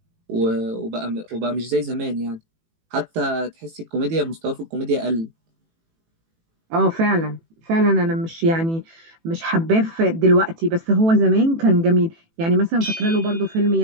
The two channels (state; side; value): late; left; 18 ms